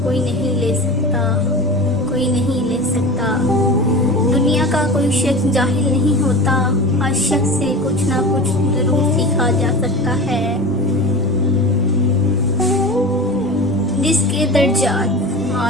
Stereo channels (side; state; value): both; normal; correlation 0.32